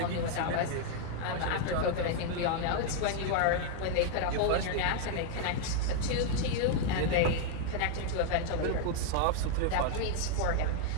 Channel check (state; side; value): different; both; correlation 0.00